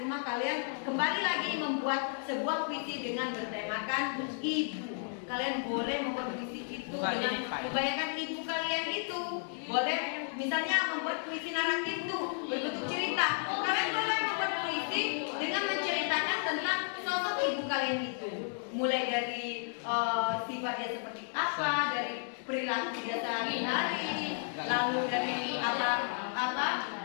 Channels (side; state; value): right; silent; 56 dB below the other